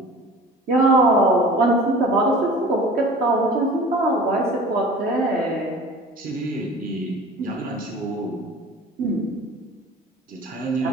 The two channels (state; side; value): normal; both; correlation 0.42